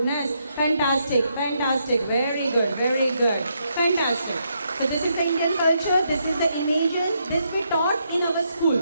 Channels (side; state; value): both; inverted; correlation -0.77